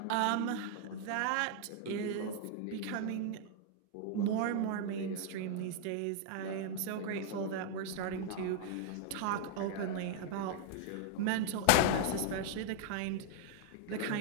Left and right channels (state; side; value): different; both; correlation 0.00